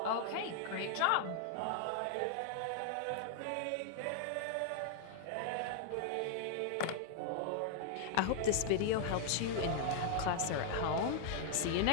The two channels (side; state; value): both; different; correlation -0.01